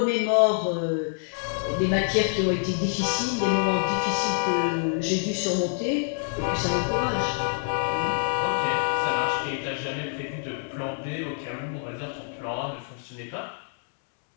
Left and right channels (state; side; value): silent; right; digital silence